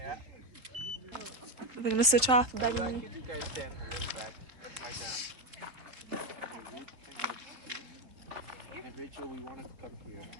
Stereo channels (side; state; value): left; late; 4.0 ms